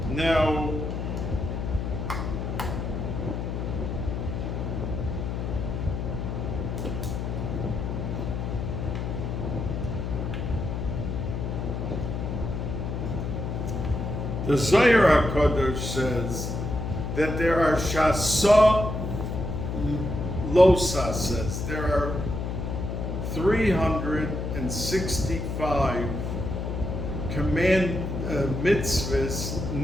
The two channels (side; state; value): left; noise; hum, 3 dB below the sound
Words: Now, the Zohar HaKadosh says that there are Shasa Losa, says there are 365 mitzvahs